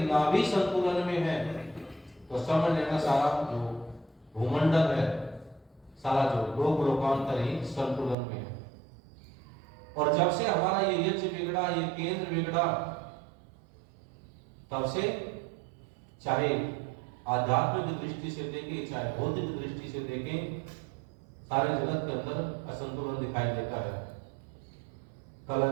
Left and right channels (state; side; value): drops out; left; at 8.2 s